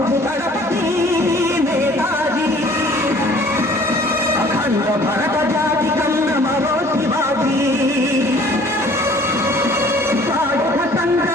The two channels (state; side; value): normal; both; correlation 0.53